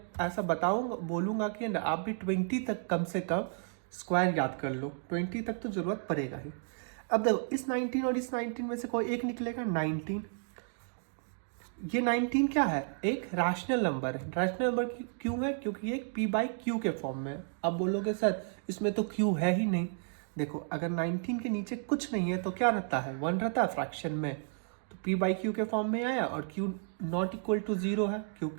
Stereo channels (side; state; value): left; silent; 56 dB below the other